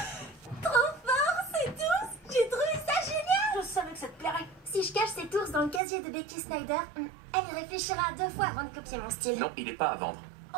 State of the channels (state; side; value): drops out; left; at 5.8 s